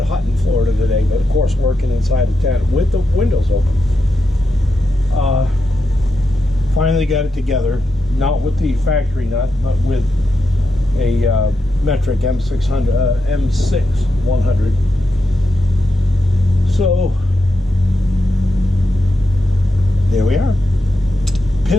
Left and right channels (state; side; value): normal; both; correlation 0.87